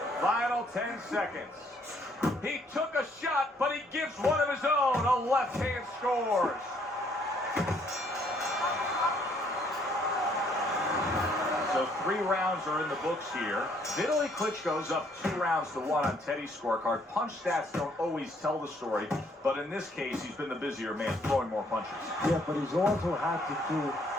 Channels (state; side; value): normal; both; correlation 0.66